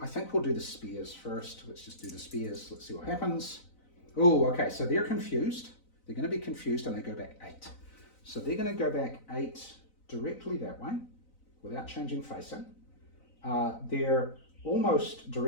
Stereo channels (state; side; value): late; right; 4.0 ms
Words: I think we'll do the spears first. Let's just do the spears, let's see what happens. Oh, okay, so they're confused. They're going to be confused and they go back 8. So they're going to go back 8 directly that way without changing facing. They're almost